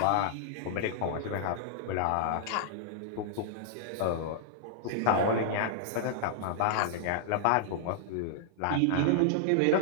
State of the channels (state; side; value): different; both; correlation -0.01